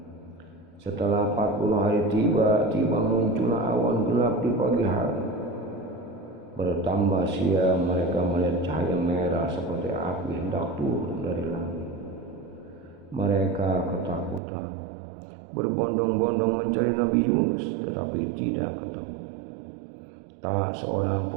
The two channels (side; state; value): left; drops out; at 14.4 s